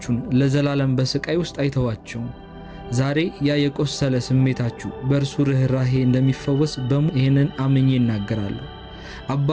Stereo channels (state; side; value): identical; both; correlation 1.00